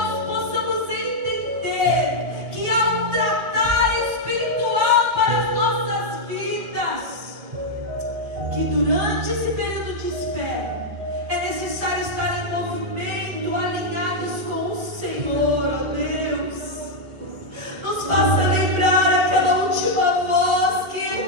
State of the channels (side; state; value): left; late; 2.1 ms